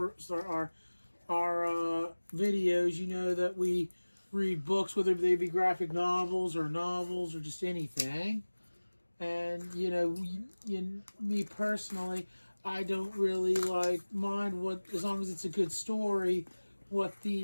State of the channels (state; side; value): inverted; both; correlation -1.00